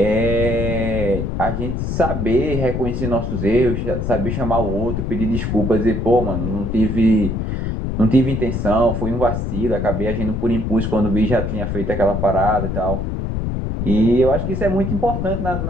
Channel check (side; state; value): left; noise; rumble, 2 dB below the sound